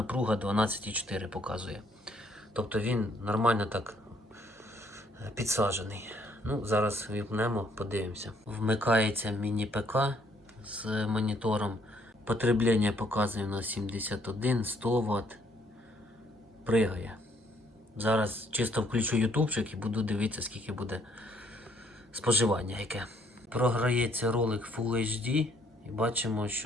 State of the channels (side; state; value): both; normal; correlation 0.66